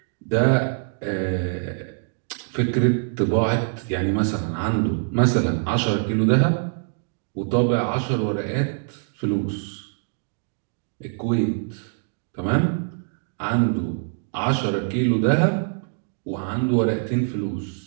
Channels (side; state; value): left; silent; 63 dB below the other